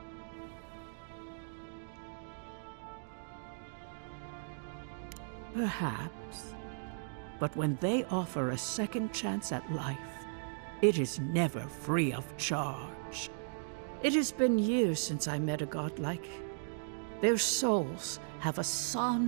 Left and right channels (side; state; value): left; silent; digital silence